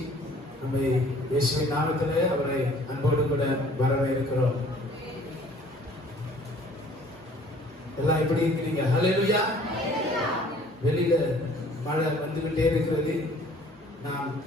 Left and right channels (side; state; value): both; normal; correlation 0.54